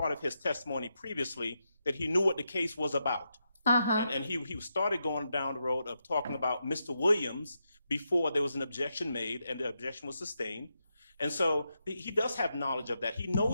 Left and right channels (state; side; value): inverted; both; correlation -0.84